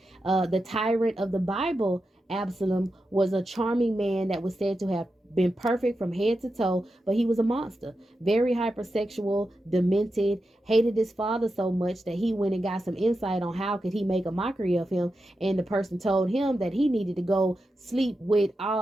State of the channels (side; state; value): both; normal; correlation 0.89